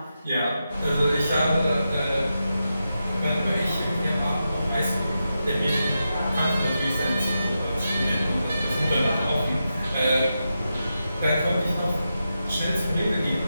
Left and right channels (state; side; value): inverted; both; correlation -0.88